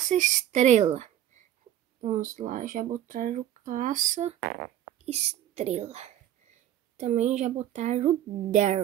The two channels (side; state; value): left; quieter; 11.6 dB